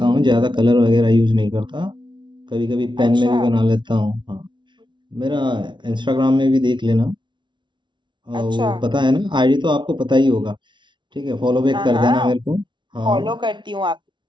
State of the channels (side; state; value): left; late; 0.23 ms